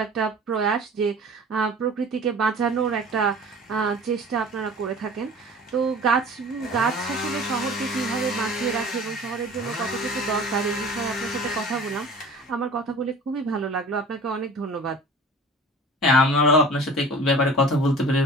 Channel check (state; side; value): normal; both; correlation 0.42